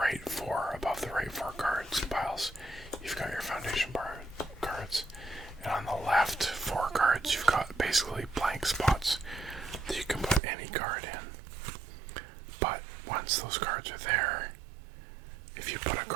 4, above the right 4 cards piles, you've got your foundation cards. And on the left 4 cards, you've got basically blank spots that you can put any card in. But once those cards are there, if you put a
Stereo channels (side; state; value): left; drops out; at 10.4 s